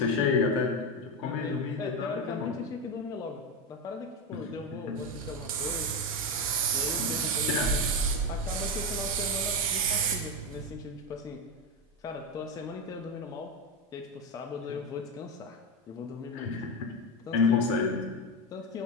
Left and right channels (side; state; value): both; normal; correlation 0.14